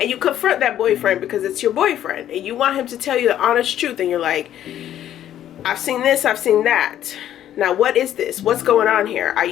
you confront that boyfriend because it's your boyfriend and you want him to tell you the honest truth, and you're like, "I've seen this, I've seen that. Now, what is this? What's going on here? Are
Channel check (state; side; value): quieter; right; 11.4 dB